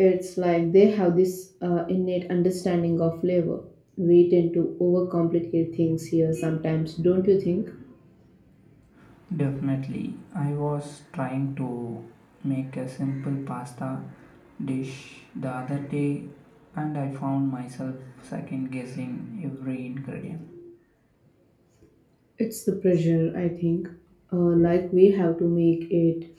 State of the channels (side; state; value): both; identical; correlation 1.00